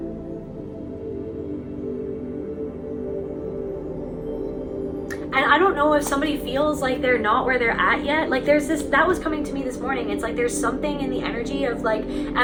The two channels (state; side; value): identical; both; correlation 1.00